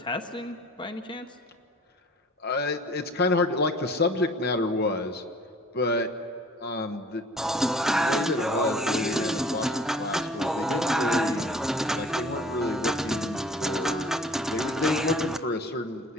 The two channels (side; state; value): both; normal; correlation 0.49